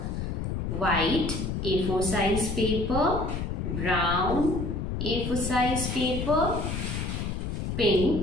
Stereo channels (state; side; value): noise; left; rumble, 2 dB below the sound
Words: white A4 size paper, brown A4 size paper,